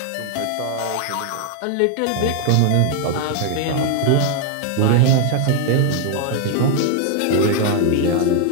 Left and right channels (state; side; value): different; both; correlation 0.00